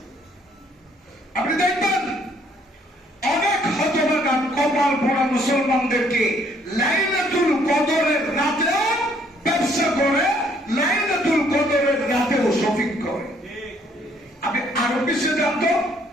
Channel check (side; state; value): both; normal; correlation 0.65